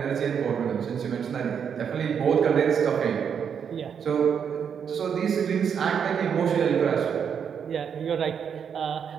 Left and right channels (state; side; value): quieter; left; 7.4 dB